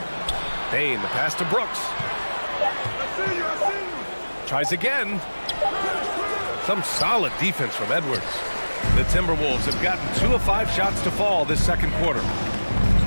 Bain, the pass to Brooks. Tries again. Some solid defense from Edwards. The Timberwolves have gotten 2 of 5 shots to fall this second quarter.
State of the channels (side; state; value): both; inverted; correlation -1.00